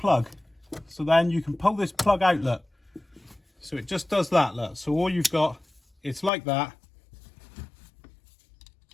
So then you can pull this plug out, look. So it just does that, look. So all you've got, it's like that.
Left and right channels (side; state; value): right; drops out; at 6.3 s